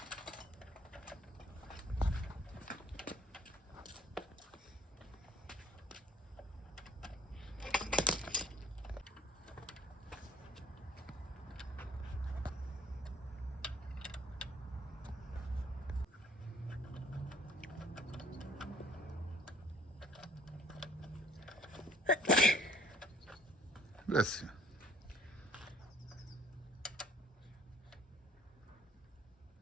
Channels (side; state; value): both; normal; correlation 0.58